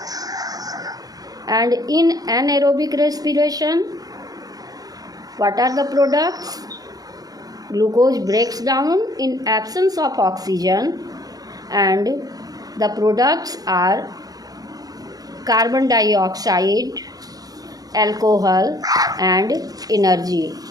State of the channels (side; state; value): left; late; 0.18 ms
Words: And in anaerobic respiration, what are the products? Glucose breaks down in absence of oxygen, and the products are carbon dioxide, alcohol and energy.